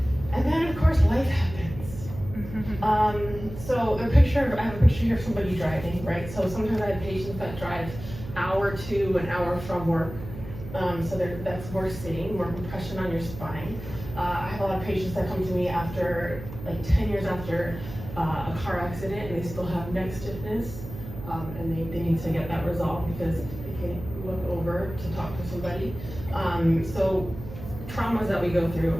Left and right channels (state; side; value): noise; right; hum, 12 dB below the sound